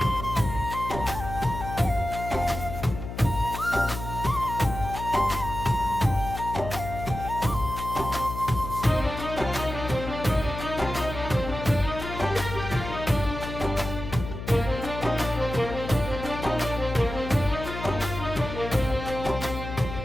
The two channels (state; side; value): noise; left; hum, 8 dB below the sound